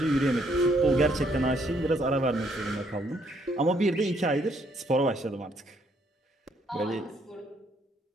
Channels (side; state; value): both; normal; correlation 0.70